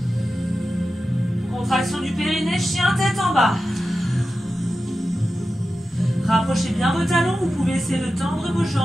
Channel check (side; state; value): both; normal; correlation 0.92